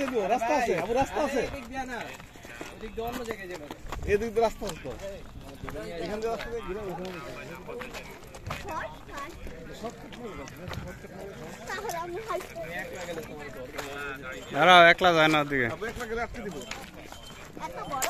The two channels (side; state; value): both; identical; correlation 1.00